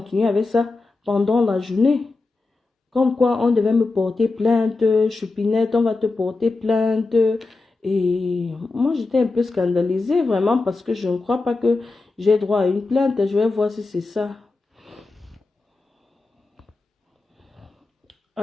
avec ça pendant la journée. Comme quoi on devait me porter plainte, Choupinette, on va te porter plainte. Et moi, j'étais un peu scandalisée, vraiment, parce que je ne crois pas que j'ai droit à une plainte. Je vais voir si c'est ça.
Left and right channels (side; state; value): right; quieter; 3.6 dB